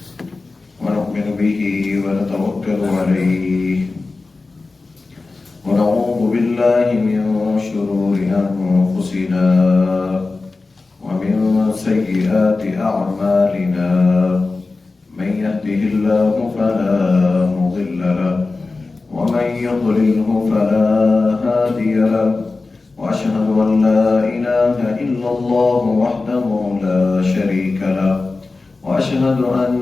ونؤمن به ونتوكل عليه ونعوذ بالله من شرور أنفسنا ومن سيئات أعمالنا من يهده الله فلا مضل له ومن يضلله فلا هادي له وأشهد أن لا إله إلا الله وحده لا شريك له وأشهد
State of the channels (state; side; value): quieter; right; 3.7 dB